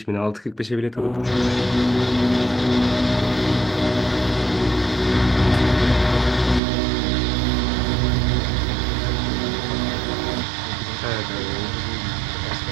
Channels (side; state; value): left; drops out; at 6.6 s